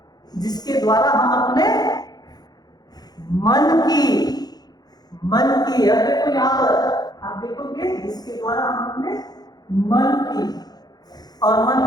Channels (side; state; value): right; late; 0.19 ms